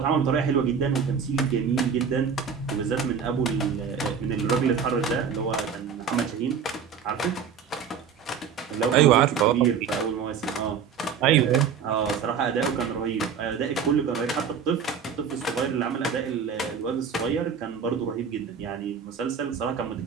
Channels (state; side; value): quieter; left; 6.8 dB